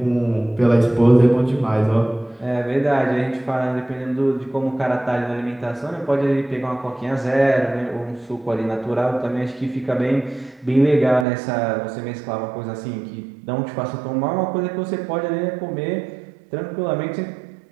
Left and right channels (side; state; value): left; drops out; at 11.2 s